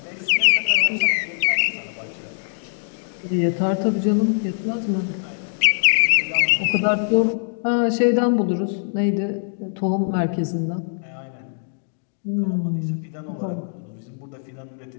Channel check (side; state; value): right; silent; digital silence